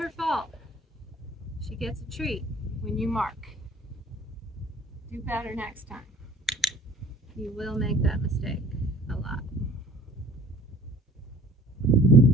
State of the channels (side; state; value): both; normal; correlation 0.49